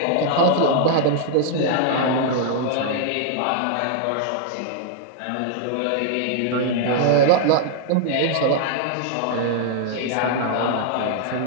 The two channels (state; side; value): different; both; correlation -0.01